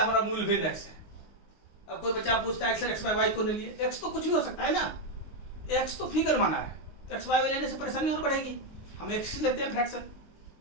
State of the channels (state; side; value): late; right; 19 ms